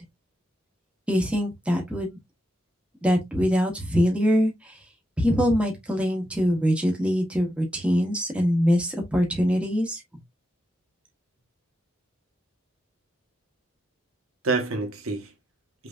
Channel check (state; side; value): normal; both; correlation 0.85